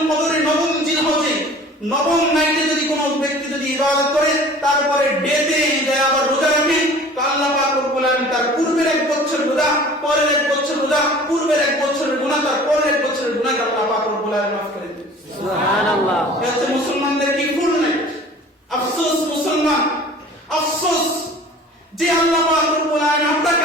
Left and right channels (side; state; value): both; normal; correlation 0.46